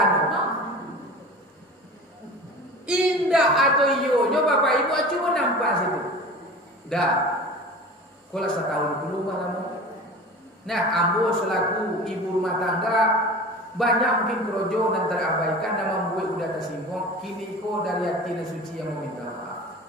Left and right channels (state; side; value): normal; both; correlation 0.37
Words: Indah atau iyo, nyoba bapak ibu cuma nampak situ. Dah. Kalau 1 tahun dulu malam. Nah, ambo selaku ibu rumah tangga banyak mungkin kerojo dan terabaikan dan membuat udah tersinggung. Kini ko dari hati dan suci yang meminta maaf.